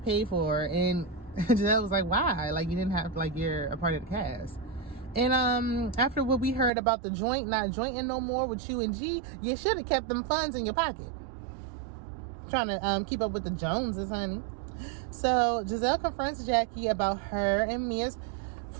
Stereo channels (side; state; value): left; drops out; at 6.7 s